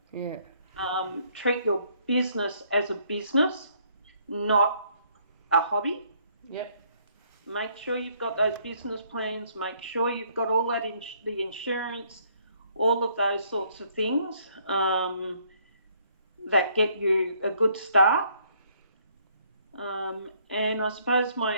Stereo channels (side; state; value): both; inverted; correlation -0.66